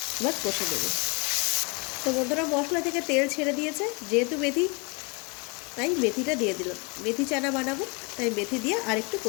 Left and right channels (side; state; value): right; quieter; 31.3 dB